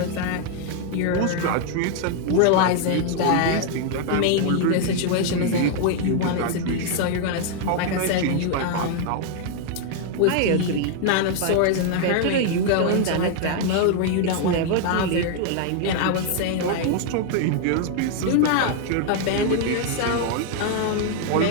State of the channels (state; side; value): different; both; correlation 0.00